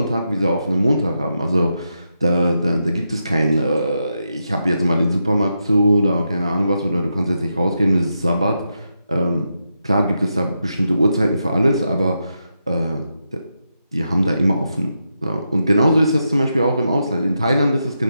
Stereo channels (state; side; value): inverted; both; correlation -0.85